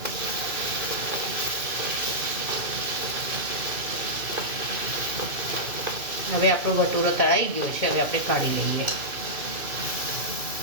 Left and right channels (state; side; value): late; left; 2.6 ms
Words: હવે આપણો ભટુરો તળાઈ ગયો છે, હવે આપણે કાઢી લઈએ।